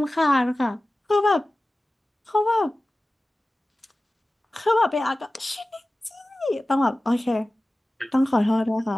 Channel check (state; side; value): normal; both; correlation 0.96